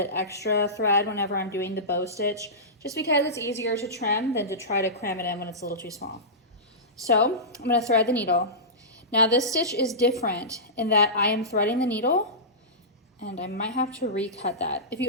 extra thread whenever I'm doing the bow stitch, just because it's easier to trim than to try to cram it in when it's a little too small. So I'm going to thread the needle. Now this stitch is different in that I am threading the needle, and I might have to recut that. If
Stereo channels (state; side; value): normal; both; correlation -0.18